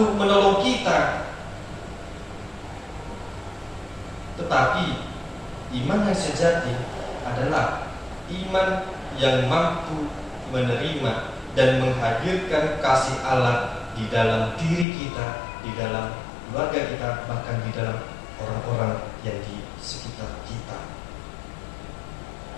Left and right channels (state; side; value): drops out; right; at 14.9 s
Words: menolong kita. Tetapi iman yang sejati adalah iman yang mampu menerima dan menghadirkan kasih Allah di dalam diri kita, di dalam keluarga kita, bahkan di dalam orang-orang yang di sekitar kita.